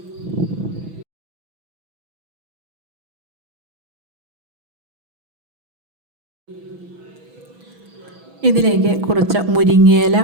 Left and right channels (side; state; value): left; late; 6.1 ms